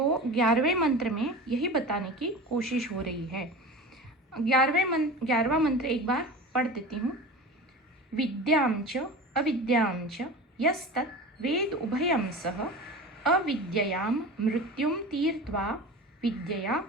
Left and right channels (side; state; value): both; normal; correlation 0.33